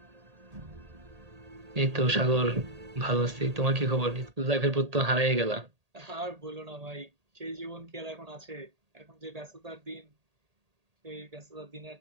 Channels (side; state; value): left; late; 1.8 ms